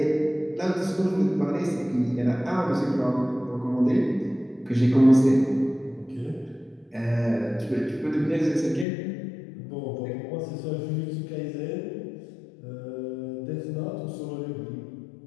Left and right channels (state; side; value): drops out; right; at 8.8 s